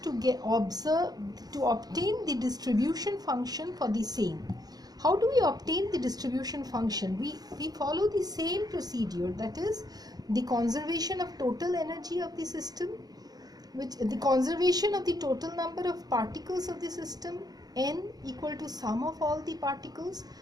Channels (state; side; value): late; left; 0.19 ms